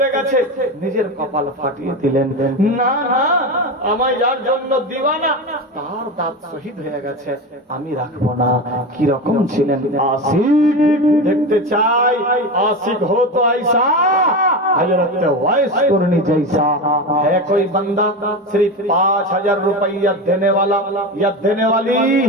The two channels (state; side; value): normal; both; correlation 0.22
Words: গেছে, নিজের কপাল ফাটিয়ে দিলেন। না না, আমায় যার জন্য দিওয়ানা তার দাঁত শহীদ হয়ে গেছে, আমি রাখবো না। কি রকম ছিলেন আশিক? দেখতে চাই आशिक हो तो ऐसा हजरत वैस कुरनी जैसा है कोई बंदा सिर्फ 5,000 रुपया देने वाला या देने वाली।